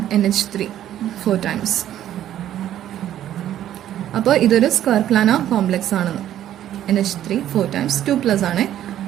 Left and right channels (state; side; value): quieter; left; 11.7 dB